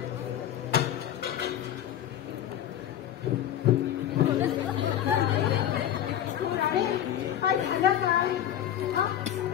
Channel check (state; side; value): quieter; right; 10.9 dB